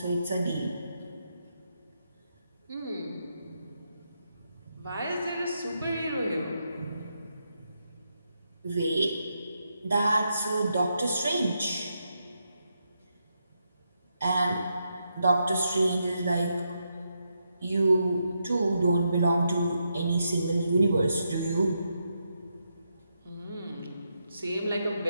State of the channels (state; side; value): inverted; both; correlation -0.82